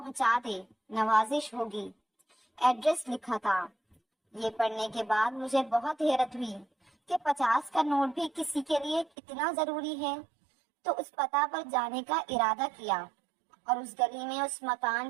دے، نوازش ہوگی۔ ایڈریس لکھا تھا۔ یہ پڑھنے کے بعد مجھے بہت حیرت ہوئی کہ 50 کا نوٹ بھی کسی کے لیے اتنا ضروری ہے، تو اس پتہ پر جانے کا ارادہ کیا اور اس گلی میں اس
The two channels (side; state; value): left; drops out; at 9.1 s